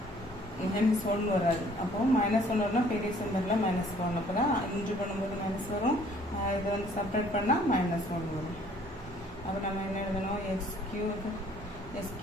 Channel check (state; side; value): normal; both; correlation 0.58